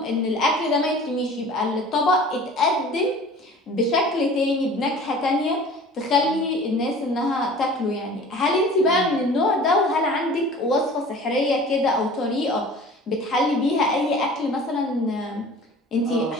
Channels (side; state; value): both; normal; correlation 0.44